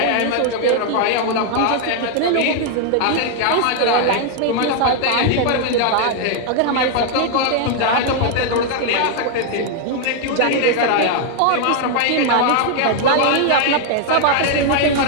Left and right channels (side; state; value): both; different; correlation 0.00